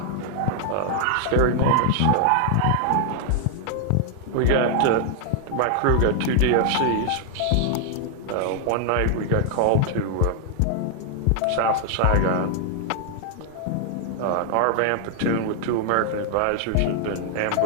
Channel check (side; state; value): both; different; correlation 0.00